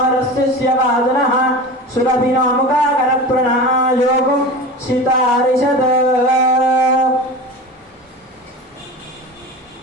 వాదనః సురభినో ముఖాకరప్రణः యోగం సితారిషద్.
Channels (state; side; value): normal; both; correlation 0.31